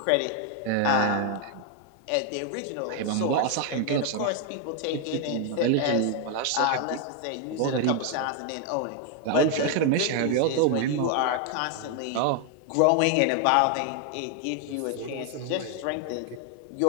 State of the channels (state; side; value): different; both; correlation 0.01